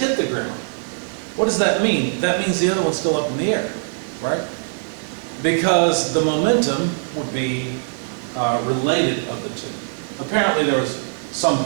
the ground. What does that mean? That means the other one's still up in the air, right? Because the momentum would be related of the two. Apparently there was some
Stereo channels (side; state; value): left; silent; digital silence